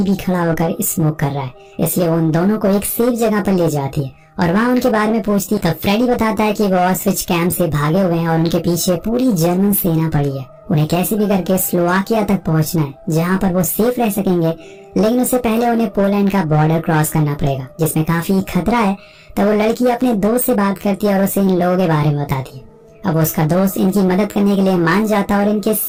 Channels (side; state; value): both; identical; correlation 1.00